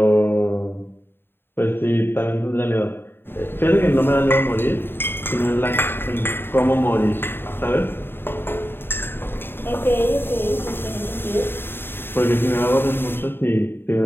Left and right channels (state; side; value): late; right; 0.11 ms